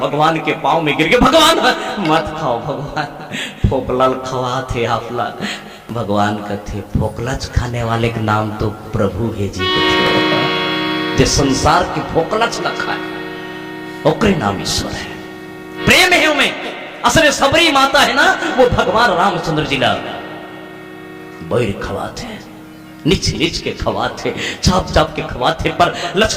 भगवान के पाँव में गिर के भगवान मत खाओ भगवान फोकलल खवात है आपला भगवान कथे फोकलच खाने वाले का नाम तो प्रभु है जी कथे जे संसार के फोकलच न खाए ओकरे नाम ईश्वर है प्रेम है उनमें असले सबरी माता है ना वो भगवान रामचंद्र जी ला बैर खवाते निच निच के खवाते चाप चाप के खवाते पर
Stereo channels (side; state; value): both; identical; correlation 1.00